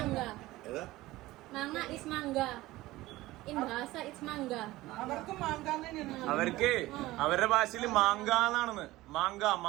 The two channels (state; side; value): quieter; left; 17.9 dB